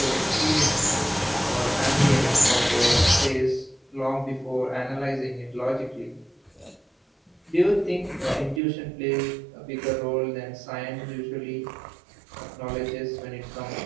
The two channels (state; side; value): drops out; left; at 8.6 s